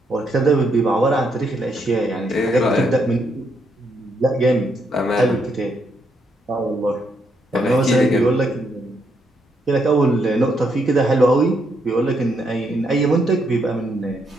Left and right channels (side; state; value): both; normal; correlation 0.76